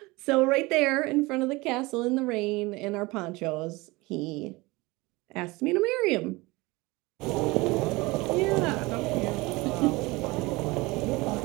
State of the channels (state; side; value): quieter; left; 22.8 dB